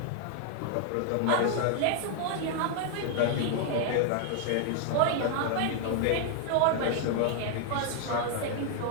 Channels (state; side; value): different; both; correlation 0.00